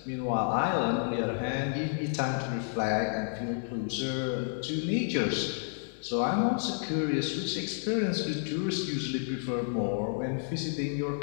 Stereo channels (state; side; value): silent; right; 57 dB below the other